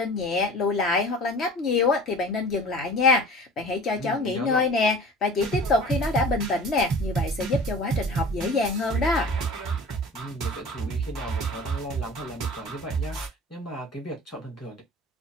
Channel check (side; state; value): both; normal; correlation 0.41